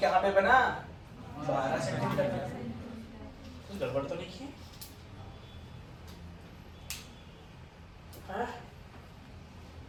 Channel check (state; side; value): identical; both; correlation 1.00